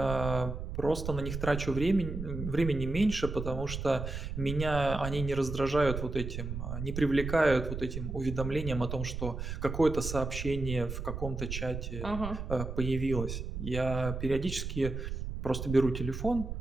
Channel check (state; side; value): noise; right; rumble, 5 dB below the sound